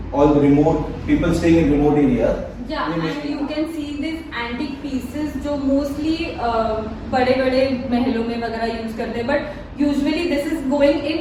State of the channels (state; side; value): identical; both; correlation 1.00